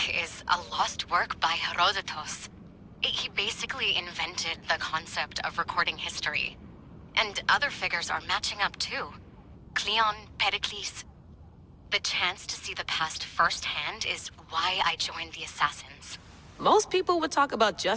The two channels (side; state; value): both; identical; correlation 1.00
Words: is a lost work by Herodotus. He basically invented the concept of recording history. And other figures are matching up too. Cleon, Pericles. The chance to see the past firsthand is why I joined the Assassins. Most people would talk about